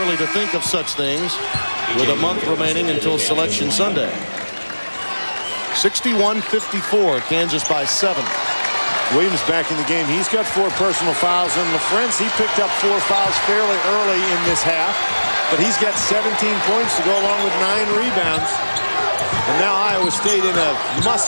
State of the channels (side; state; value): both; inverted; correlation -1.00